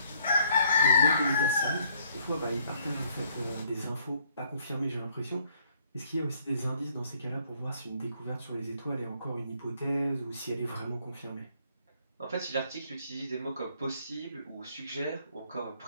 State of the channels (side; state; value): both; inverted; correlation -0.65